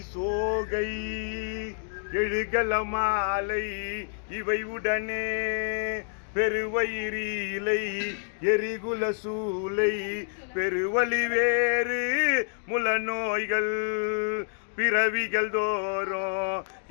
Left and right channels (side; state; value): right; silent; digital silence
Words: சோகை எழுகல மாலை இவை உடனே பெருவயிரிலை எரிகுல சூலை பெருவலி வேறு முல நோய்கள் பிறவிகள் தோறும்